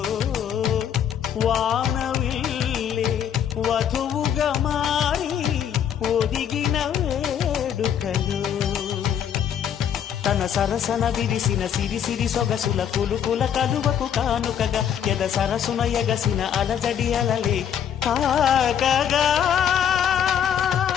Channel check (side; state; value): right; quieter; 9.0 dB